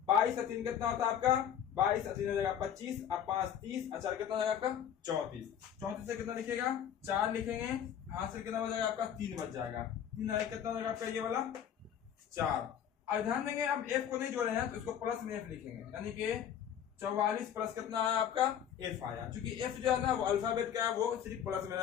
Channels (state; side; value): quieter; right; 9.3 dB